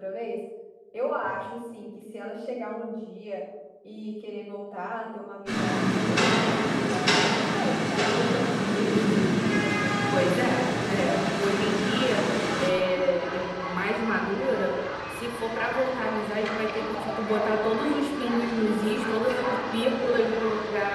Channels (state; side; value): identical; both; correlation 1.00